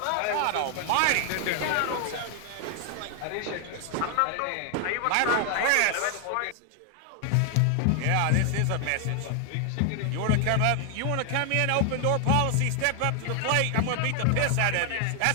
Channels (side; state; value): both; different; correlation 0.00